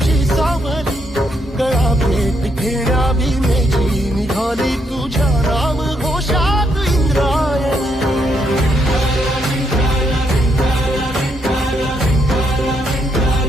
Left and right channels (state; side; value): normal; both; correlation 0.76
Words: सावली गळा भेट घेण्या भीमेची निघाली तुझ्या राम घोषात इंद्रायणी